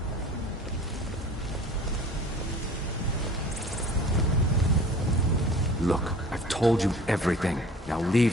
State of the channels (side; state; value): both; normal; correlation 0.45